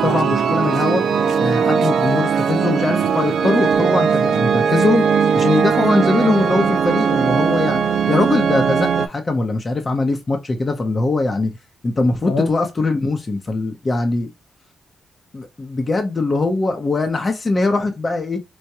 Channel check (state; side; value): normal; both; correlation 0.81